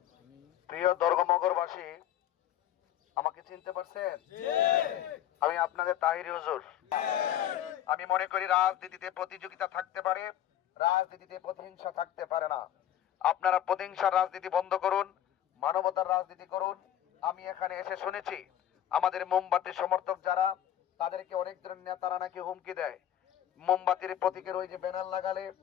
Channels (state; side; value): quieter; right; 11.2 dB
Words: প্রিয় দর্গমগরবাসী, আমাকে চিনতে পারছেন? আমি আপনাদের তাহিরি হুজুর। আমি মনে করি রাজনীতিতে প্রতিযোগিতা থাকতে পারে, রাজনীতিতে প্রতিহিংসা থাকতে পারে না। আপনারা প্রতিহিংসার রাজনীতি বন্ধ করুন, মানবতার রাজনীতি করুন। আমি এখানে এসে শুনেছি আমাদের মোমবাতি সমর্থক যারা, তাদেরকে অনেক ধরনের নেতারা নাকি হুমকি দেয়। মোমবাতির প্রতীকের ওই যে ব্যানার লাগালে,